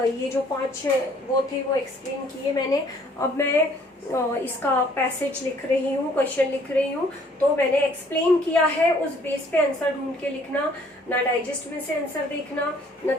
जो 5 वो थे वो एक्सप्लेन किए मैंने। अब मैं इसका पैसेज लिख रही हूँ, क्वेश्चन लिख रही हूँ। तो मैंने एक्सप्लेन किया है, उस बेस पे आंसर ढूंढ के लिखना, ना डाइजेस्ट में से आंसर देखना, ना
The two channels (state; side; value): normal; both; correlation 0.60